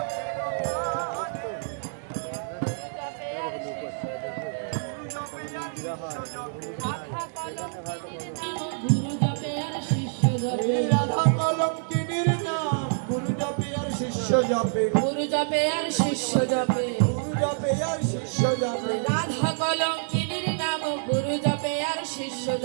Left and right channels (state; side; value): silent; left; digital silence